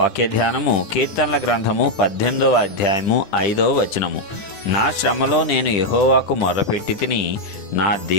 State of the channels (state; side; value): late; right; 10 ms